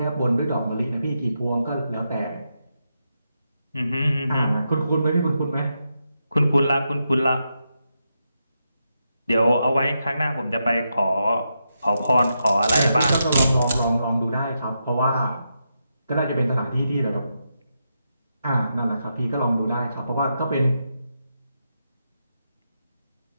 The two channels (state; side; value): inverted; both; correlation -0.84